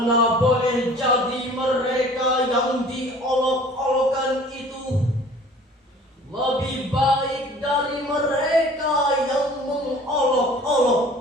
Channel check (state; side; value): normal; both; correlation 0.48